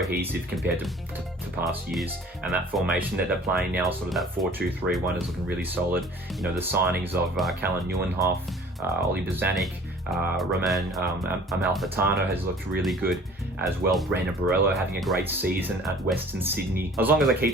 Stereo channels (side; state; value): both; normal; correlation 0.49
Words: compared to past years. And that formation that they're playing now, sort of that 4-2-3-1, is looking really solid. The signings of Callan Nieuwenhof, Oli Bozanic, Roman Amalfitano has looked really good as well. Brandon Borello having a great season at Western Sydney. As long as they keep